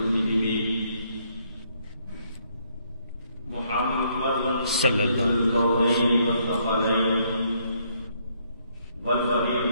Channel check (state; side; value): inverted; both; correlation -0.70